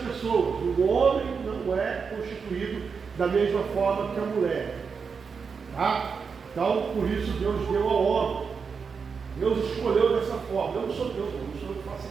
O homem não é constituído da mesma forma que a mulher, tá? Então, por isso Deus deu ao homem. Deus escolheu dessa forma. Eu não sou Deus, não sou eu que faço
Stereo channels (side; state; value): left; quieter; 5.7 dB